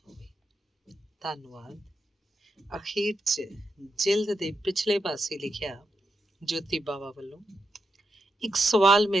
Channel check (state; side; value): normal; both; correlation 0.85